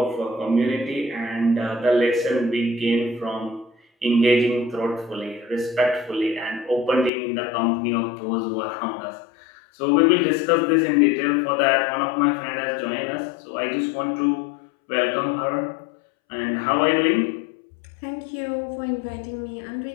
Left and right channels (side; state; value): right; drops out; at 7.1 s